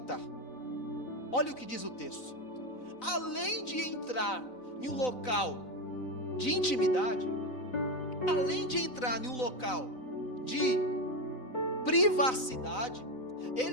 Olha o que diz o texto. Além de entrar em um local de intimidade, além de entrar em um local de privacidade,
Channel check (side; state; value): right; late; 4.0 ms